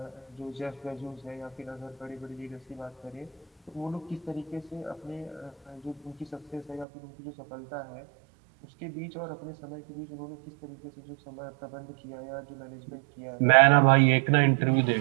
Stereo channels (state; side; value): drops out; left; at 6.9 s